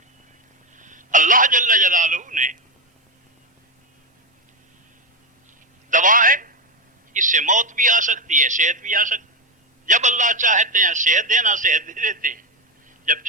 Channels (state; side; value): normal; both; correlation 0.09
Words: اللہ جل جلالہ نے دوا ہے، اس سے موت بھی آ سکتی ہے، صحت بھی آ سکتی ہے. جب اللہ چاہتے ہیں صحت دینا، صحت دے دیتے ہیں. جب